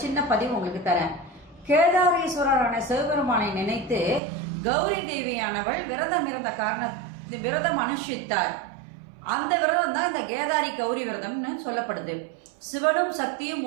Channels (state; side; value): drops out; left; at 4.2 s